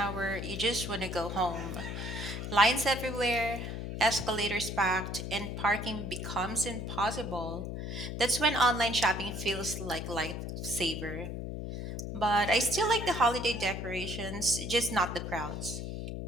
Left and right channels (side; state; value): left; noise; hum, 5 dB below the sound